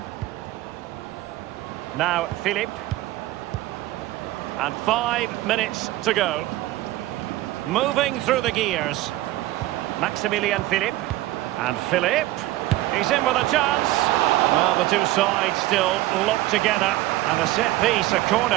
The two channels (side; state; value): left; quieter; 16.7 dB